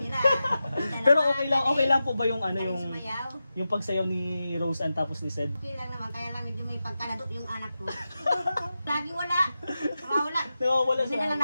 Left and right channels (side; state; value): both; inverted; correlation -0.91